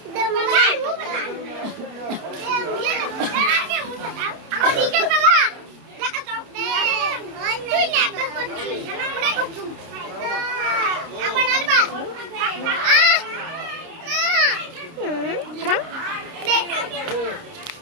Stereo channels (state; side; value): late; left; 29 ms